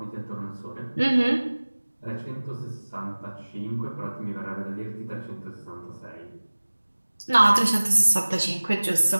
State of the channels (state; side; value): inverted; both; correlation -1.00